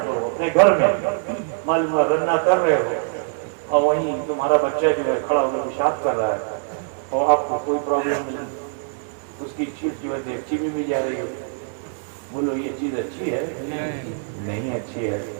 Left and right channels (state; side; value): silent; left; 63 dB below the other